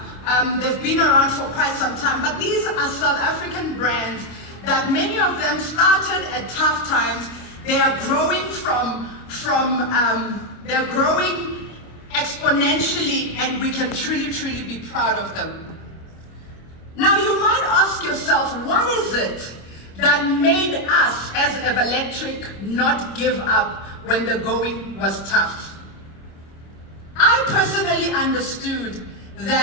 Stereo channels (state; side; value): late; right; 25 ms